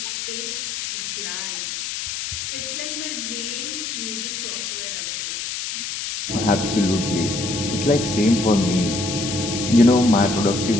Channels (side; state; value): left; noise; hiss, 5 dB below the sound